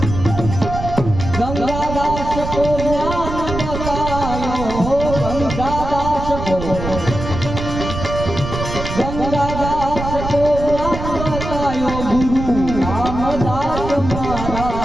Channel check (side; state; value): right; noise; rumble, 6 dB below the sound